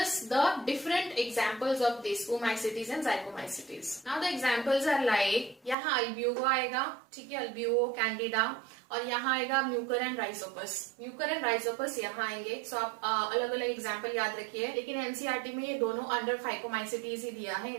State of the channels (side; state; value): left; drops out; at 5.8 s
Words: the different examples of this oomaisities and zygomycetes. Now the examples are like, यहाँ अल्ब्यूगो आएगा, ठीक है, अल्ब्यूगो कैंडिडा, और यहाँ आएगा mucor and rhizopus. Mucor and rhizopus यहाँ आएंगे। सो आप अलग अलग एग्जांपल याद रखिए, लेकिन एनसीईआरटी में ये दोनों अंडर फाइकोमाइसिटीज ही दिया है।